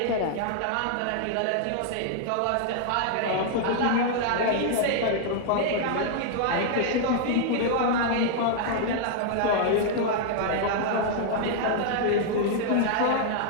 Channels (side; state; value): both; different; correlation -0.01